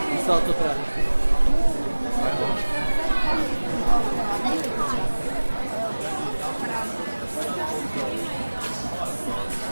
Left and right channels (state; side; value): inverted; both; correlation -1.00